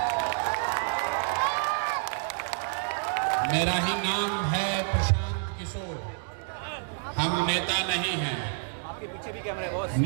मेरा ही नाम है प्रशांत किशोर। हम नेता नहीं हैं,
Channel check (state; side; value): silent; left; digital silence